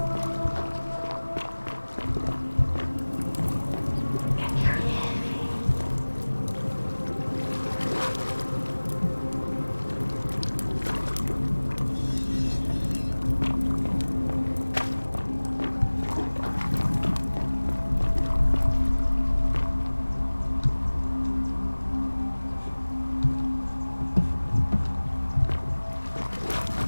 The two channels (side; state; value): both; inverted; correlation -1.00